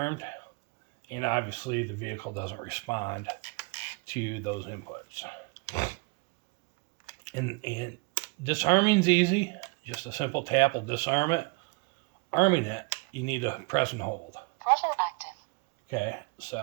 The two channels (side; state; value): left; quieter; 27.9 dB